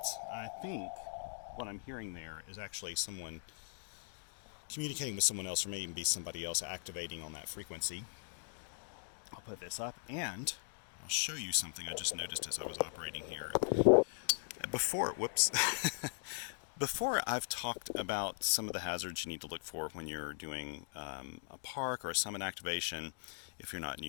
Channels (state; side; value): silent; right; digital silence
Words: I think what I'm hearing there is actually someone communicating with someone else, or maybe even be somebody else activating on that frequency. I'll put this up and I'll show you something I just noticed as I was operating here. Before I've talked about some of the hazards you need to look for when you're doing a park or a summit activation, if you're not